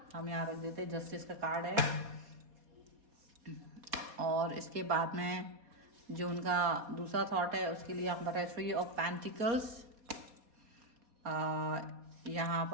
हम यहाँ रख देते हैं, जस्टिस का कार्ड है। और इसके बाद में जो उनका दूसरा थॉट है उसके लिए यहाँ पर है थ्री ऑफ पेंटिकल्स। यहाँ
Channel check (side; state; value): left; late; 4.2 ms